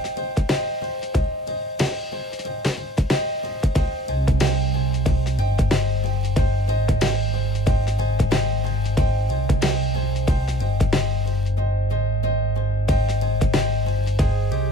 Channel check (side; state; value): both; normal; correlation 0.55